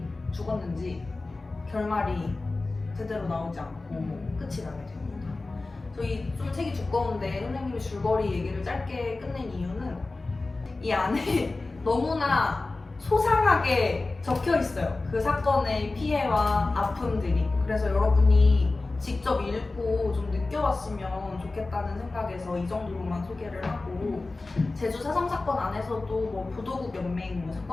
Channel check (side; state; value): right; quieter; 3.4 dB